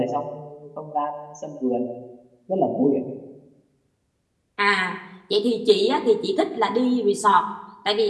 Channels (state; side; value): identical; both; correlation 1.00